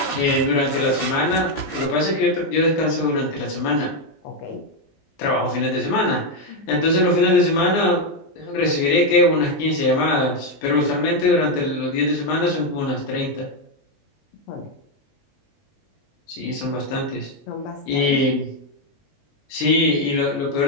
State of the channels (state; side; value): late; right; 20 ms